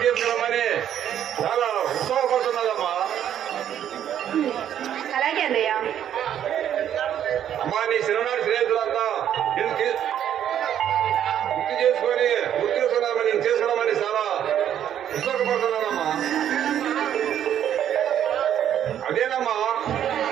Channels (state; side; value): quieter; left; 10.1 dB